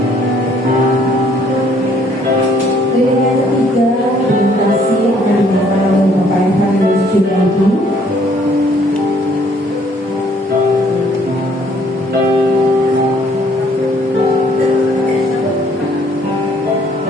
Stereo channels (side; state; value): both; normal; correlation 0.63